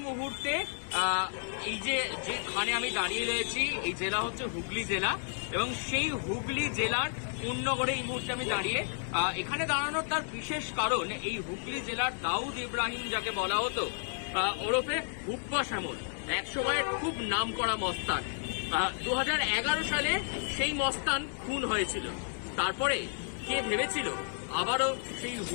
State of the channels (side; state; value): right; silent; 56 dB below the other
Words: মুহূর্তে এই যেখানে আমি দাঁড়িয়ে রয়েছি, এই জেলা হচ্ছে হুগলি জেলা, এবং সেই হুগলি জেলার কোন্নগরে এই মুহূর্তে আমি দাঁড়িয়ে। এখানে দাঁড়ানোর তার বিশেষ কারণ, এই হুগলি জেলার দাউদ ইব্রাহিম যাকে বলা হতো ওরফে হুব্বা শ্যামল, একসময়ের খুব নাম করা মস্তান। 2011 সালে সেই মস্তান খুন হয়েছিল। তারপরে কে ভেবেছিল আবারও সেই